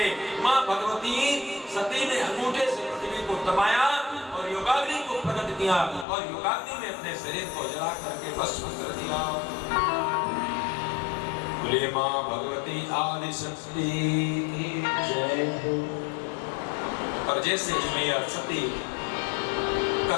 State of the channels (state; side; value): drops out; right; at 6.1 s